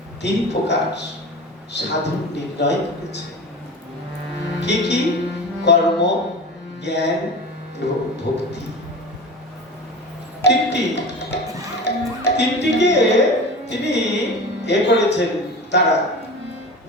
3 প্রকার সাধন নির্ণয় করেছে। কি কি? কর্ম, জ্ঞান এবং ভক্তি। তিনটিকে তিনি করেছেন। তারা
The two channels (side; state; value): both; normal; correlation 0.32